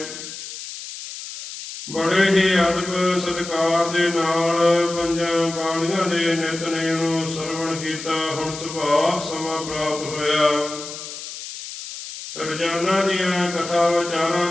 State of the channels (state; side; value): noise; left; hiss, 10 dB below the sound